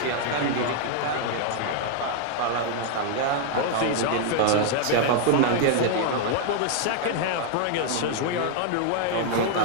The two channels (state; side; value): different; both; correlation 0.00